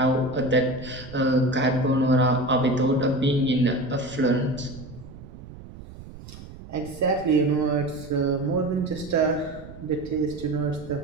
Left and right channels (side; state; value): right; noise; rumble, 16 dB below the sound